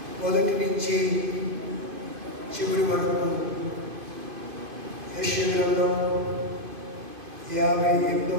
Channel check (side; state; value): left; late; 2.5 ms